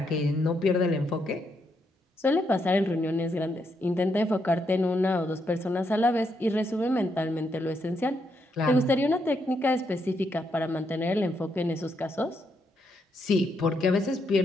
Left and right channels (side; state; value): both; normal; correlation 0.78